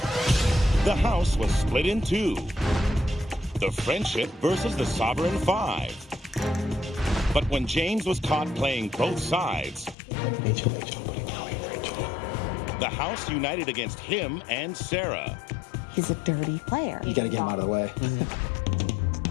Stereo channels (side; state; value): right; drops out; at 10.0 s